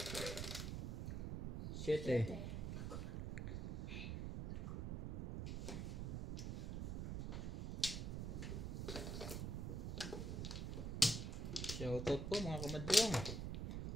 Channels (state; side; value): noise; right; rumble, 2 dB below the sound